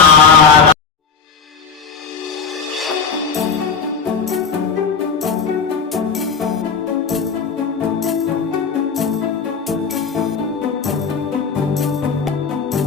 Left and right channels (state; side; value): quieter; right; 5.9 dB